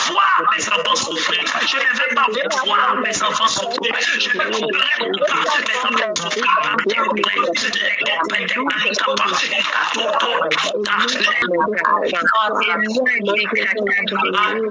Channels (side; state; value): both; identical; correlation 1.00